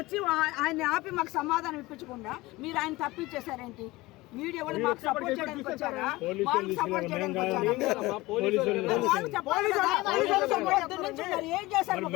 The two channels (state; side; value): quieter; right; 20.2 dB